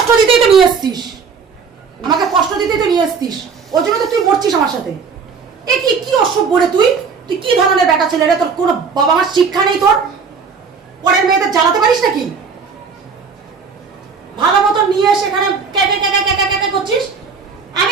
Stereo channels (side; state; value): left; quieter; 5.6 dB